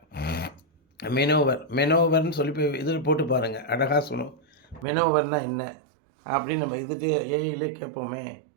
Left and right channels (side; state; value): left; drops out; at 4.9 s